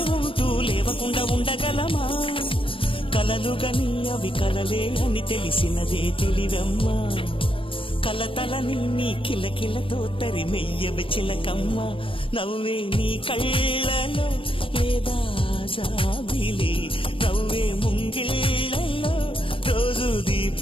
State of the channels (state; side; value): late; right; 0.26 ms